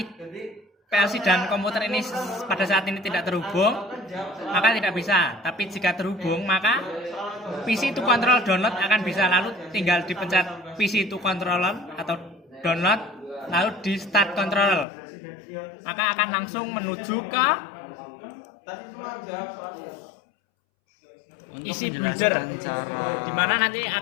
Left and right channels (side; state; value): right; drops out; at 14.9 s